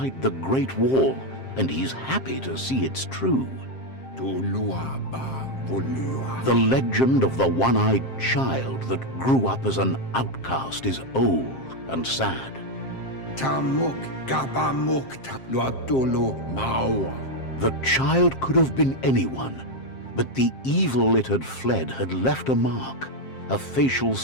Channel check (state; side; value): late; right; 7.6 ms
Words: the Great Wall, and he's happy to see it's true. Tolua ba, volua. The legend of the one-eyed child that grew up as an outcast is old and sad. Tamuk, gabamuk, luatolo, mawa. The child could have been anyone, but the evil it had fled had left a mark, a facial